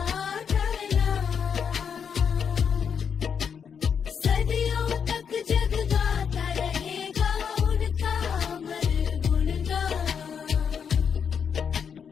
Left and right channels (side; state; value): right; quieter; 7.1 dB